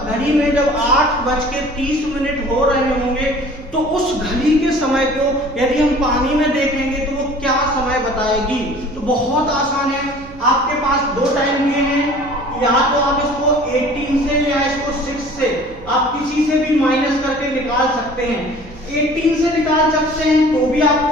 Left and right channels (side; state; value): right; noise; hum, 21 dB below the sound